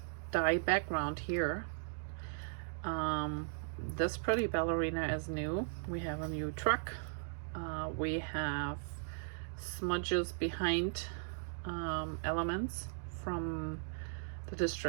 die background here. This pretty ballerina is new. We have a new truck. We have smudges behind elements from the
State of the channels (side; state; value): left; silent; digital silence